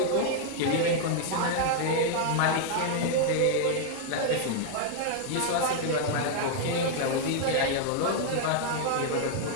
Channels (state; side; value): different; both; correlation 0.00